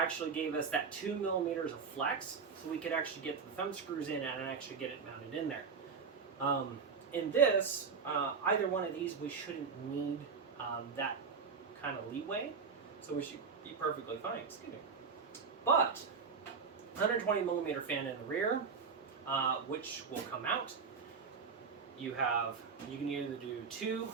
gave us that 2 millimeters of flex, so we could actually get the thumb screws in and actually get it mounted in there. In this, either one of these, we shouldn't need that kind of leeway, so we should be perfectly fine. Excuse me. But 120 millimeter fan in the rear, which will come out. You can either do 2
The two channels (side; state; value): left; quieter; 5.5 dB